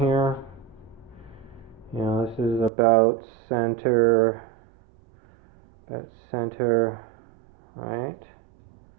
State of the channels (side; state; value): left; drops out; at 2.7 s